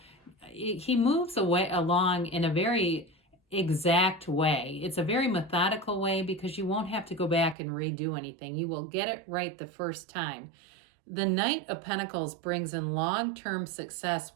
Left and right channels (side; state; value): left; drops out; at 7.6 s